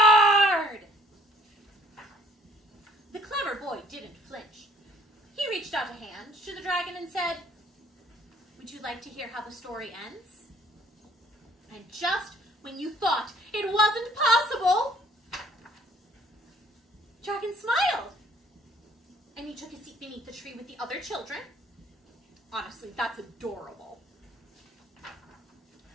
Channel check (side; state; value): both; normal; correlation 0.59